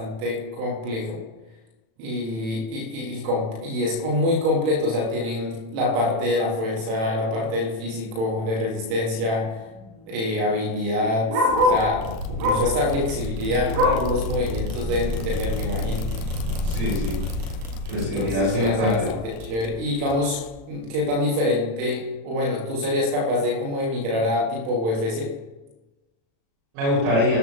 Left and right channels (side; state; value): left; late; 36 ms